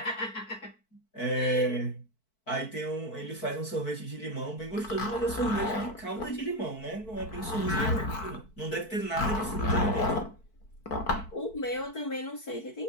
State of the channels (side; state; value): right; late; 4.6 ms